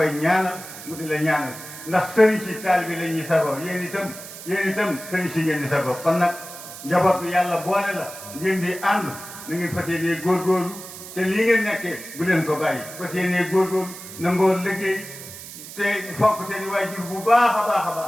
ñaanal mu di la ñaanal ndax sëriñ si taalibe la ñuy sagoo yéen itam sëriñ si ngeen di sagoo kon nag njaboot bi yàlla boole la ngeen di ànd na ngeen fas yéenee góorgóorlu te lii ngeen nekkee bu leen ko bàyyi fas yéenee góorgóorlu nangoo liggéey te fonk seen i waajur bu baax a baax a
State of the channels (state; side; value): noise; right; hiss, 13 dB below the sound